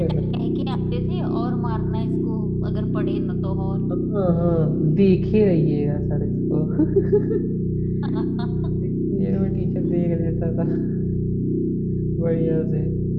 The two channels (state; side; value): identical; both; correlation 1.00